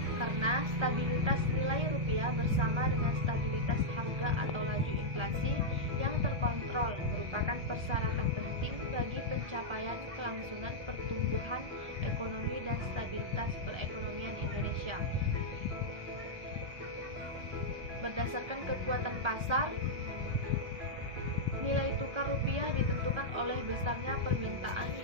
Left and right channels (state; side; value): late; left; 1.3 ms